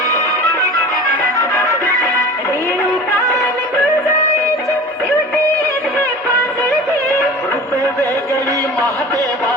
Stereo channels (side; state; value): both; normal; correlation 0.38